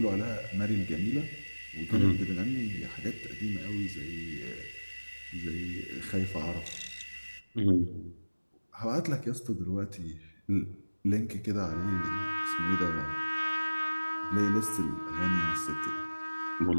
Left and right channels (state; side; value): inverted; both; correlation -1.00